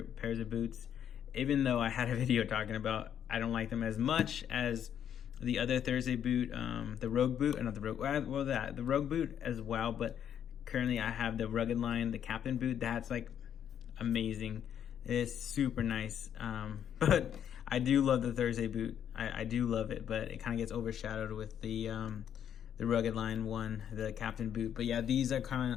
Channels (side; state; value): right; quieter; 9.3 dB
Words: pairs of boots. Even though I had a video talking about I don't like them as much as the other Thursday boot, the Rogue boot, not the Rogue, well, the Rogue boot as well. But currently I have the Rugged line, the Captain boot. That's like amazing. It's super nice. But I do love the Thursday boot. I do love it, but it kind of gets overshadowed with the Rugged line one, the Captain boot. But yeah, these are kind